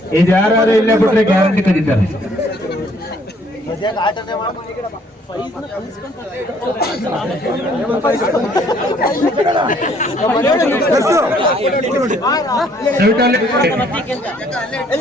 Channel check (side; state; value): both; normal; correlation 0.63